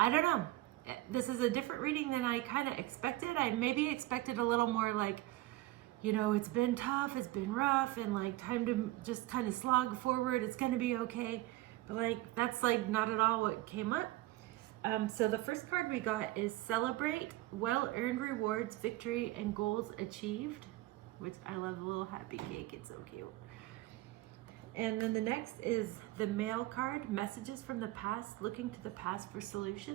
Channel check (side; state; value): left; quieter; 17.8 dB